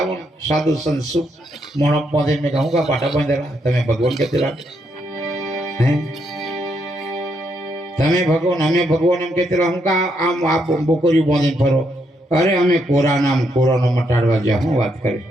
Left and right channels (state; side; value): normal; both; correlation 0.77